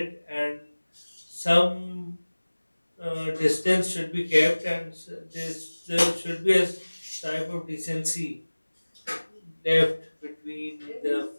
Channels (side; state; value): both; inverted; correlation -1.00